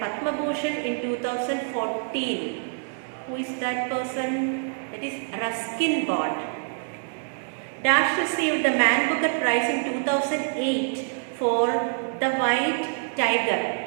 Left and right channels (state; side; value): silent; left; 61 dB below the other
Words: Padma Bhushan in 2014. Who is that person? That is Ruskin Bond. Dash received the Man Booker Prize in 2008 for The White Tiger.